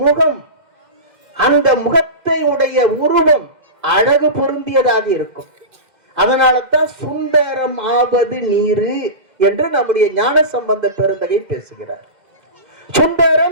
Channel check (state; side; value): late; left; 2.0 ms